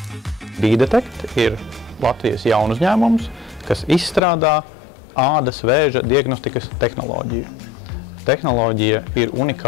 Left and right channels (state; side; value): drops out; right; at 4.2 s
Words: B-Detect ir Latvijas jaunu uzņēmums, kas izstrādā ādas vēža diagnostikas tehnoloģiju. Tehnoloģija ir